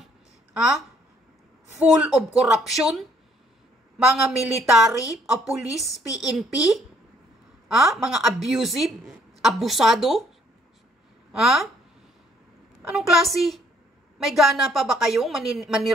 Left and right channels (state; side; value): normal; both; correlation 0.65